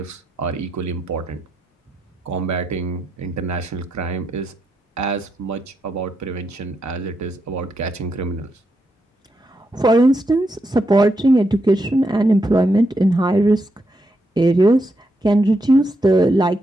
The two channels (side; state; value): both; normal; correlation 0.82